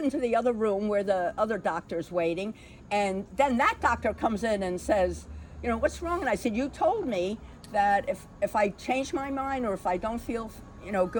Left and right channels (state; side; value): identical; both; correlation 1.00